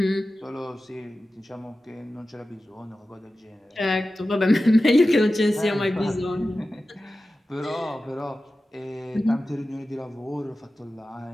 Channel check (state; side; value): normal; both; correlation 0.94